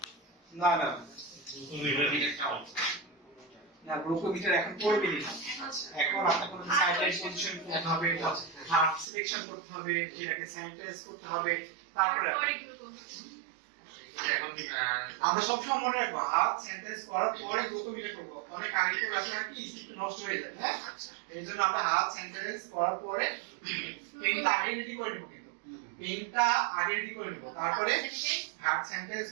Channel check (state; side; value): drops out; left; at 9.1 s